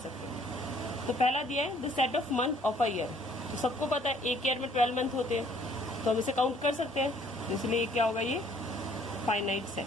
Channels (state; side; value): normal; both; correlation 0.60